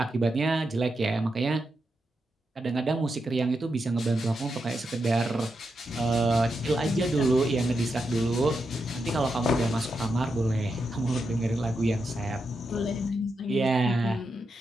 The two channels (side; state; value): both; normal; correlation 0.86